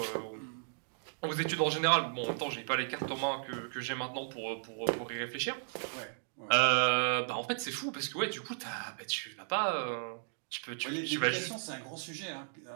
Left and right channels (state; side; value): silent; left; digital silence